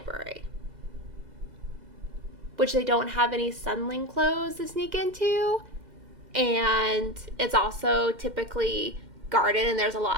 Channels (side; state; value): left; late; 2.0 ms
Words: which they don't have any Sunling clothes to sneak into, and it's also typically guarded, and there's a lot